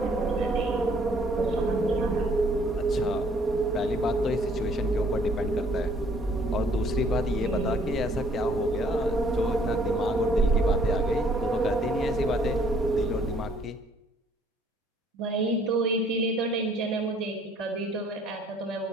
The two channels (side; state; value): both; normal; correlation 0.61